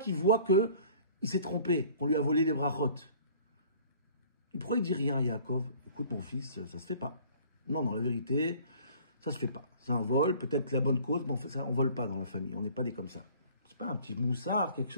il voit que il s'est trompé, qu'on lui a volé les brachot. Pourquoi il dit rien à Yaakov? Écoute, mon fils, ça se fait pas. Non, la vérité, ça se fait pas. C'est un vol, peut-être la bonne cause, mais on vole pas dans la famille. On n'est pas des comme ça. C'est pas un petit moussard, quelque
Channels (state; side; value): inverted; both; correlation -0.51